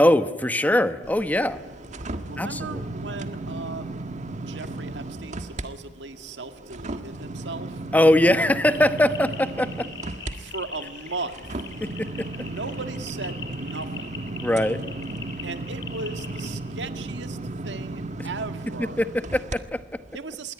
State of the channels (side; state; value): both; normal; correlation 0.76